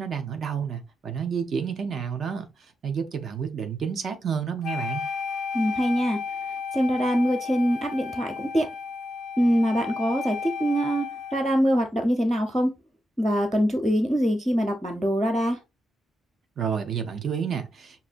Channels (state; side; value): normal; both; correlation 0.86